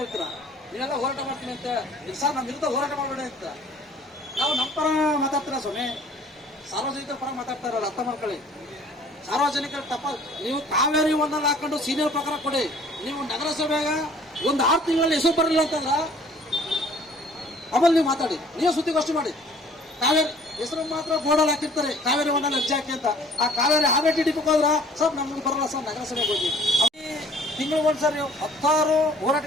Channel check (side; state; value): both; normal; correlation 0.54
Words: ನೀವೆಲ್ಲ ಹೋರಾಟ ಮಾಡ್ತೀನಿ ಅಂತ. ಸರ್ ನಮ್ಮ ವಿರುದ್ಧ ಹೋರಾಟ ಮಾಡಬೇಡಿ ಅಂತ ನಾವು ನಮ್ಮ ಪರ ಮಾತಾಡ್ತೀರಾ ಸ್ವಾಮಿ, ಸಾರ್ವಜನಿಕರ ಪರ ಮಾತಾಡ್ತಾ ಇರಲ್ಲ, ಅರ್ಥ ಮಾಡ್ಕೊಳ್ಳಿ. ಸಾರ್ವಜನಿಕರ ತಪ್ಪ, ನೀವು ಕಾವೇರಿ ಒಂದಲ್ಲಿ ಹಾಕೊಂಡು ಸೀನಿಯರ್ ಪ್ರಕಾರ ಕೊಡಿ. ನೀವು ನಗರಸಭೆಗ ಒಂದು 6 ತಿಂಗಳಲ್ಲಿ ಹೆಸರು ಬರಲಿಲ್ಲ ಅಂತಂದ್ರ ಆಮೇಲೆ ನೀವು ಮಾತಾಡಿ, ನೀವು ಸುದ್ದಿಗೋಷ್ಠಿ ಮಾಡಿ. ಕಾವೇರಿ ಹೆಸರು ಮಾತ್ರ ಬೋರ್ಡಲ್ಲಿ ಹಾಕಿರ್ತಾರೆ, ಕಾವೇರಿ ಒಂದಲ್ಲಿ ಅರ್ಜಿ ಹಾಕಿ ಅಂತ. ಆ ಕಾವೇರಿ RTDP ಹೋದ್ರ ಸರ್ ನಮ್ಗೆ ಬರಲ್ಲ ಸರ್, ನಗರಸಭೆಗೆ ಹೋಗಿ. ತಿಂಗಳು ಒಂದ್ಸರಿ 16